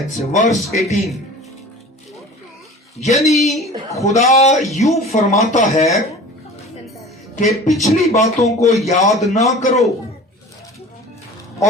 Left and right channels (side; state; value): both; normal; correlation 0.40